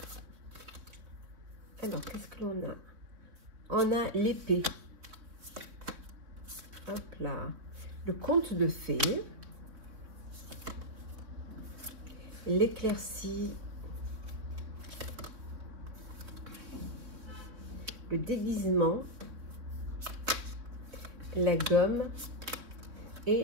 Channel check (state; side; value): late; left; 3.7 ms